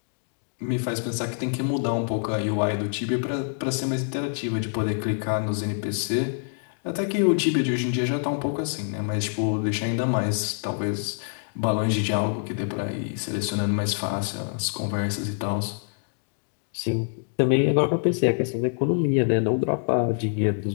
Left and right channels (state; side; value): silent; right; digital silence